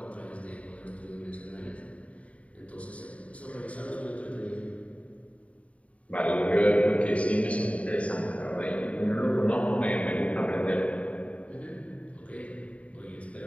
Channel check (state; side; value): late; right; 0.066 ms